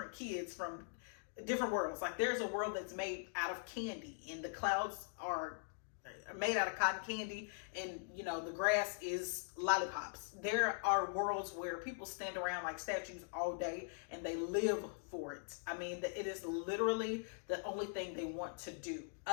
kids from different worlds. Like there's a world that's made out of candy, and the clouds are made out of cotton candy, and you know the grass is lollipops. There are worlds where people stand around like statues all day and they live for it. I mean, it is literally the only thing they want to do.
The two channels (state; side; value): silent; right; digital silence